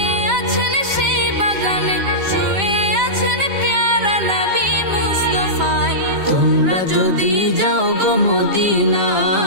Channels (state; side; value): late; left; 5.1 ms